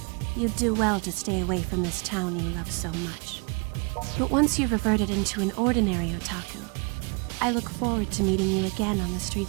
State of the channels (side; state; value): left; quieter; 32.4 dB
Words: you'd do well to stay away from this town you love so much. But once you've reverted into an ordinary otaku, I look forward to meeting you again on the